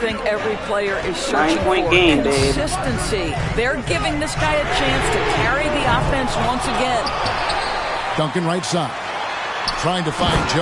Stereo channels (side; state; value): both; identical; correlation 1.00